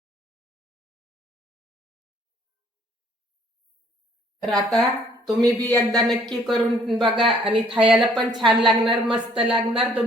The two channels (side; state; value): both; normal; correlation 0.61